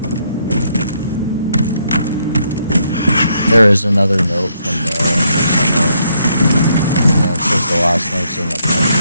There is another note from the... it says the last note's in the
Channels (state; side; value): inverted; both; correlation -0.74